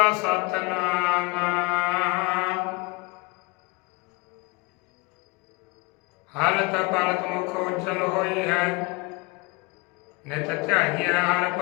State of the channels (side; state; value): right; quieter; 26.5 dB